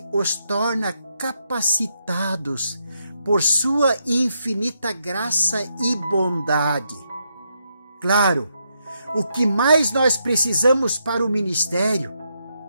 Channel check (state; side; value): inverted; both; correlation -0.79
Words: os torna capacitados por sua infinita graça e bondade. Claro, o que mais nós precisamos para o ministério